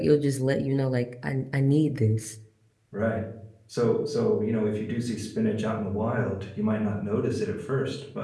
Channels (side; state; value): both; identical; correlation 1.00